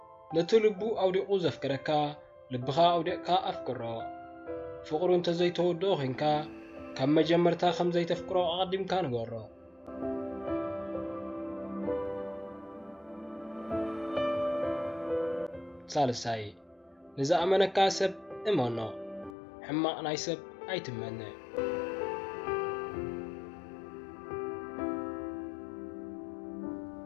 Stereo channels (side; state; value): right; drops out; at 19.4 s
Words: ነቲ ልቡ ኣውዲቑ ዘፍቅረካ ልብኻ ኣውዲቕካ ኣፍቅሮ ፍቕሩ እንተዘይተወድኦ ኮንካ ካብ መጀመርታ ከም ዘይተፍቅሮ ኣቐዲምካ ንገሮ ሳልሳይ ንዝኣመነካ ሰብ እመኖ ሕማቕ ናይ ሰብ ኣይትመነ